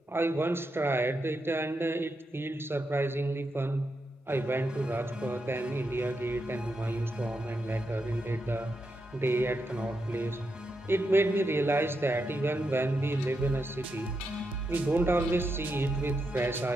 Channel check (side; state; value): both; normal; correlation 0.84